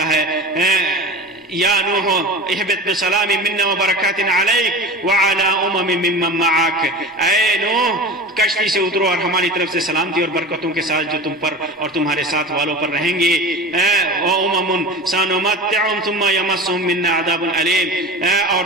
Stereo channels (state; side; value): normal; both; correlation 0.33